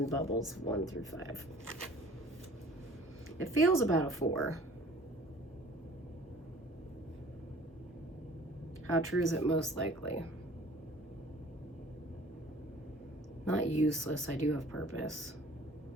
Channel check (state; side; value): normal; both; correlation 0.50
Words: bubbles 1 through 5. It feels about a 4. How true is it most likely? Not useless. I do have purpose.